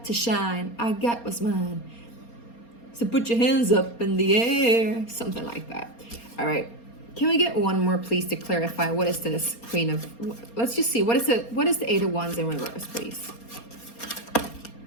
to shine. I got what's mine. So put your hands up in the air. Something like that. All right. Can we get one more, please, to clarify what is this Queen of... Let's just see. What is the Eight of Wands in reverse, please?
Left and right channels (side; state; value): right; late; 4.3 ms